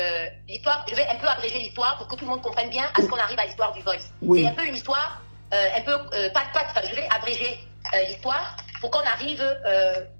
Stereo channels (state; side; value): inverted; both; correlation -1.00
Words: l'histoire, je vais un peu abréger l'histoire pour que tout le monde comprenne bien à ce qu'on arrive à l'histoire du voice. Oui. C'est un peu une histoire, je vais abréger l'histoire pour qu'on arrive,